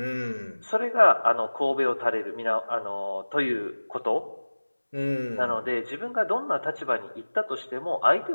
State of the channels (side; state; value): both; inverted; correlation -1.00